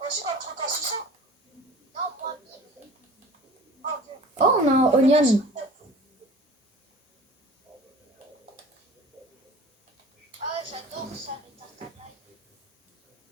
Aussi, t'as le truc à 600. Non, moins 1000. Ah, ok. Oh, on a un onion. Ah, j'adore ça, les tartes à l'ail.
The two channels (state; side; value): normal; both; correlation 0.43